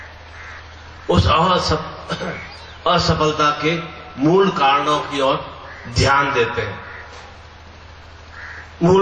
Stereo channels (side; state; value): both; identical; correlation 1.00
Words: उस असफलता के मूल कारणों की ओर ध्यान देते हैं,